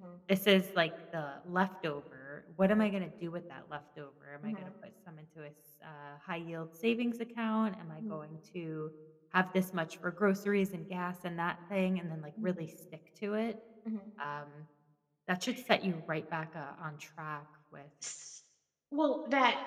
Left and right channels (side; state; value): both; identical; correlation 1.00